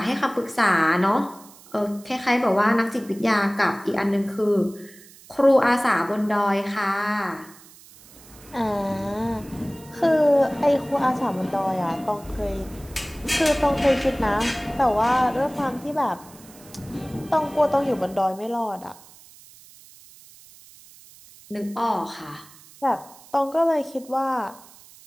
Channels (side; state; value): right; noise; hiss, 23 dB below the sound